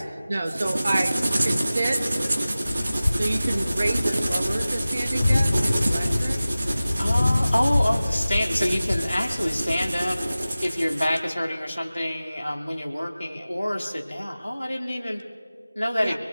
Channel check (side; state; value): both; inverted; correlation -0.97